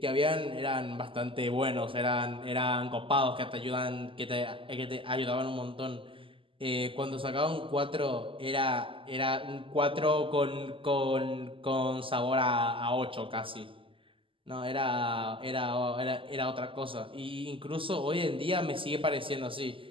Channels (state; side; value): late; left; 0.25 ms